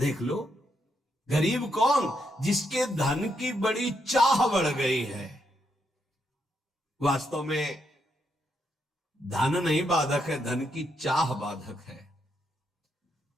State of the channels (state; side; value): normal; both; correlation 0.79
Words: लो गरीब कौन, जिसके धन की बड़ी चाह बढ़ गई है। वास्तव में धन नहीं बाधक है, धन की चाह बाधक है।